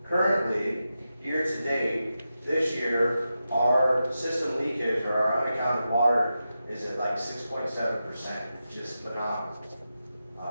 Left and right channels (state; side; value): inverted; both; correlation -0.90